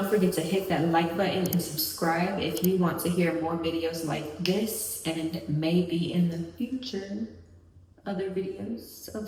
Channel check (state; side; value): identical; both; correlation 1.00